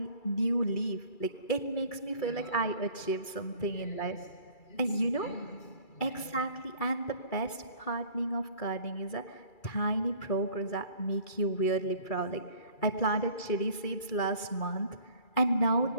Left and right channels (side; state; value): right; late; 2.3 ms